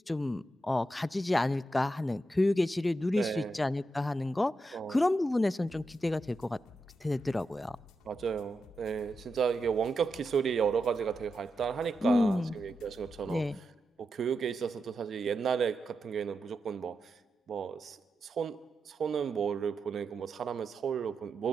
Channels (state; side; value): normal; both; correlation 0.87